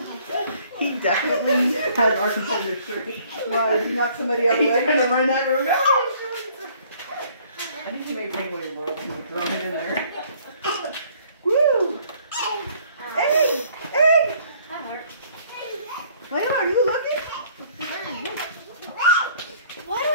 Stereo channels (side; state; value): both; inverted; correlation -0.59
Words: He definitely has our competitor's shirt. Why, did he knock somebody out of the way? He's going to run out of the room. I think he made penguin in the world and throw him in there. Woo! Hey! Hey! Layla, are you looking? Why do I